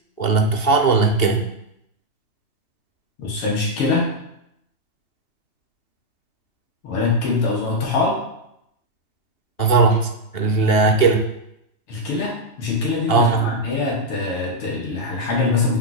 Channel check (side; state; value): right; late; 2.8 ms